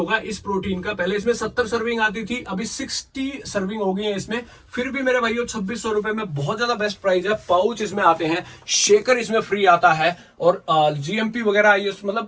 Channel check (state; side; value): identical; both; correlation 1.00